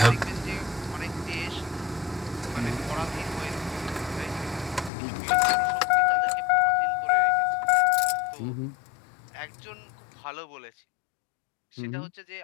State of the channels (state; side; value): drops out; right; at 4.9 s